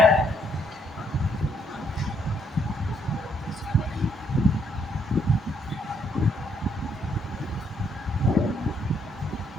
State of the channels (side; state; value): both; normal; correlation 0.71